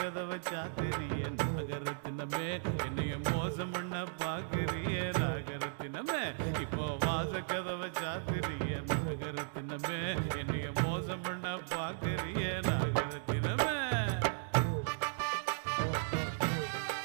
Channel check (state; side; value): silent; left; digital silence